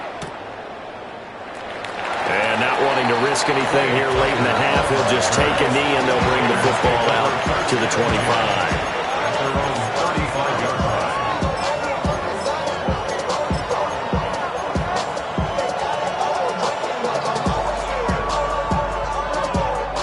And not wanting to risk anything here late in the half, he'll just take a knee and they'll bring the football out to the 25.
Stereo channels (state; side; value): identical; both; correlation 1.00